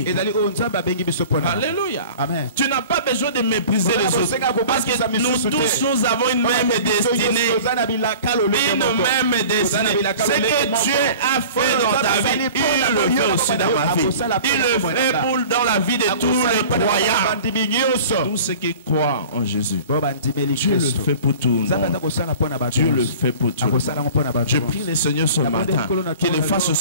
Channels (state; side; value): inverted; both; correlation -0.42